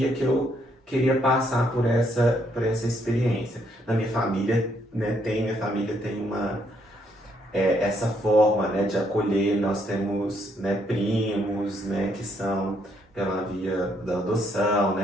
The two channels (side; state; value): both; normal; correlation 0.72